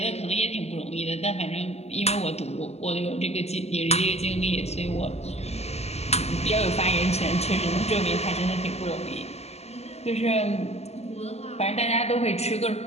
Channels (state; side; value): late; right; 0.30 ms